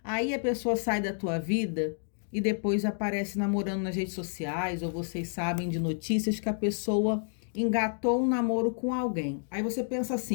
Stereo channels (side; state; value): right; silent; digital silence